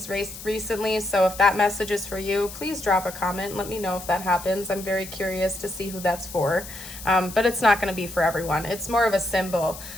recently. So if that message is for you, please drop a comment and let me know if that happens. I'm very curious to see who that's for, but it's not gonna be for everyone. It's more of a symbol.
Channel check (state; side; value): noise; left; hiss, 13 dB below the sound